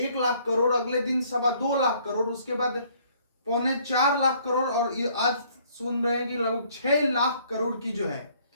लाख करोड़, अगले दिन 2.25 लाख करोड़, उसके बाद 3.25 लाख करोड़, और आज सुन रहे हैं कि लगभग 6 लाख करोड़ की जो है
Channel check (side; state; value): both; inverted; correlation -0.62